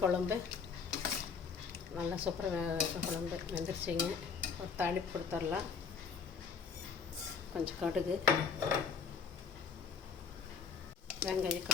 குழம்பு நல்லா சூப்பராக குழம்பு வெந்துருச்சிங்க. ஒரு தாளிப்பு கொடுத்துடலாம். கொஞ்சம் கடுகு, வெங்காயம்,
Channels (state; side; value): quieter; right; 5.7 dB